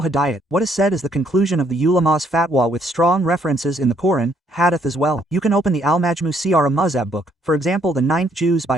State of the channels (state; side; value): normal; both; correlation 0.69